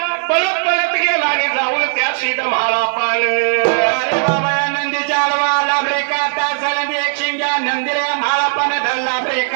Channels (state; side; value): silent; left; 65 dB below the other